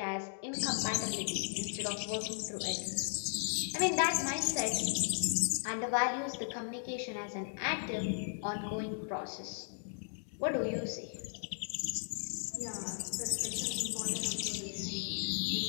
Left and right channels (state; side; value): silent; right; digital silence